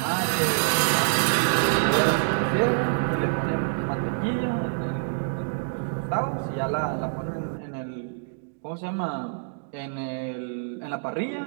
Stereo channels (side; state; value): left; silent; digital silence